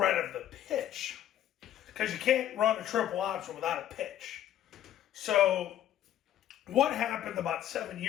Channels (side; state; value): right; quieter; 11.8 dB